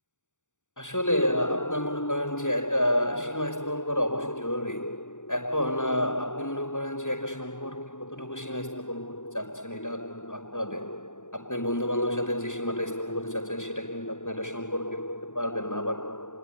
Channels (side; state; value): right; late; 0.86 ms